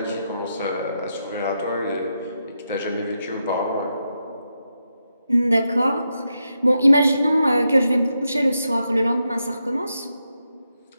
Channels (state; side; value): inverted; both; correlation -0.85